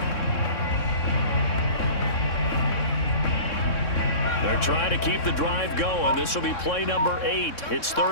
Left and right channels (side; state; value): right; late; 3.6 ms